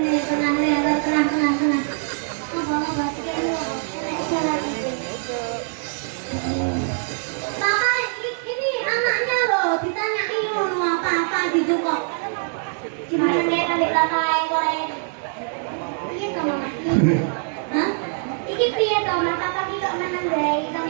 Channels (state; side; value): silent; left; 59 dB below the other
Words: Tenang ya, tenang. Mau basket lu. Jalan. Papa, ini anaknya loh. Ditanyain mau apa gitu kok. Gimana kayak adik lantai goreng? Iya kamu mati. Hah? Iki piye to, Mas? Papa ki kok meneng bae.